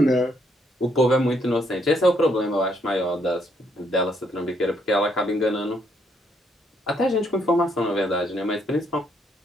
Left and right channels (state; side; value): normal; both; correlation 0.72